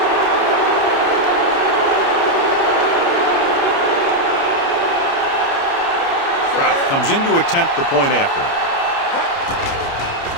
Kraft comes in to attempt the point after.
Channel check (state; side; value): late; right; 29 ms